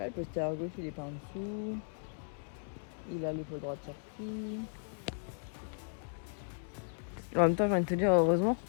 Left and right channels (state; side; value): silent; right; digital silence